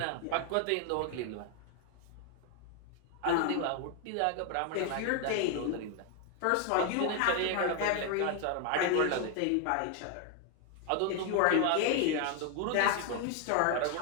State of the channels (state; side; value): different; both; correlation 0.01